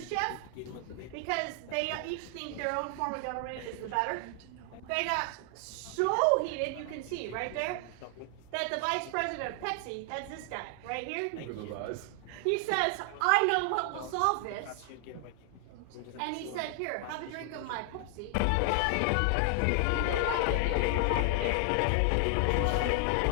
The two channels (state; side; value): different; both; correlation 0.00